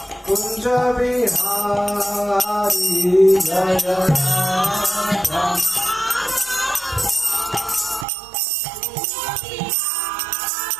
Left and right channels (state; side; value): drops out; left; at 8.1 s